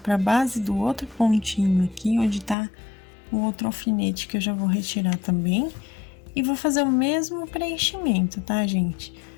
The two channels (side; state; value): right; drops out; at 2.6 s